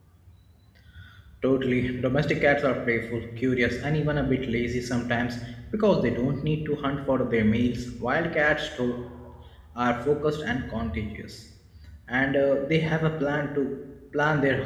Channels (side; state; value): both; identical; correlation 1.00